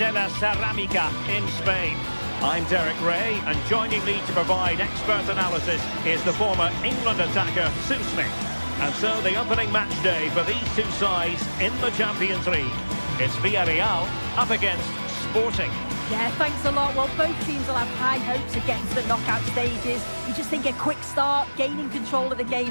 la Ceramica in Spain. I'm Derek Ray, and joining me to provide expert analysis is the former England attacker, Sue Smith. And so the opening match day for these two sides in the Champions League. It's Villarreal up against Sporting. Yeah, thanks a lot. Well, both teams will have high hopes of getting to the knockout stages. You just think a quick start, gaining control of the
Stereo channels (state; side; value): inverted; both; correlation -1.00